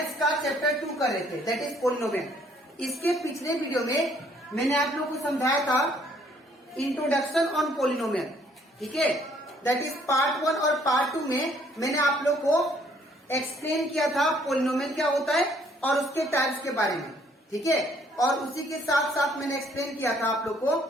का चैप्टर 2 कर रहे थे, दैट इज पोलिनोमियल। इसके पिछले वीडियो में मैंने आप लोग को समझाया था इंट्रोडक्शन ऑन पोलिनोमियल, ठीक है। दैट इज पार्ट 1 और पार्ट 2 में मैंने आप लोग को एक्सप्लेन किया था पोलिनोमियल क्या होता है और उसके टाइप्स के बारे में, ठीक है। और उसी के साथ साथ मैंने एक्सप्लेन किया था आप लोग को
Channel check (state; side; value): normal; both; correlation 0.63